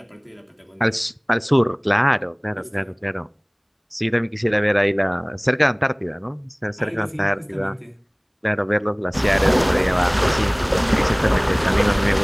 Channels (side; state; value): both; identical; correlation 1.00